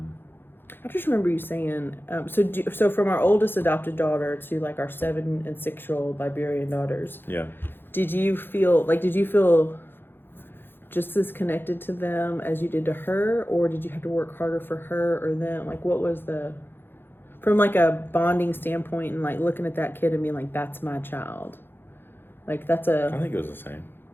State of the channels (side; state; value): right; late; 0.10 ms